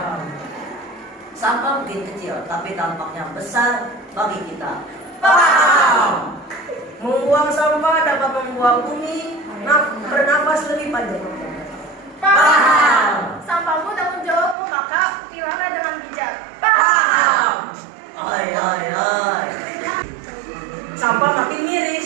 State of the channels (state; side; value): drops out; left; at 14.6 s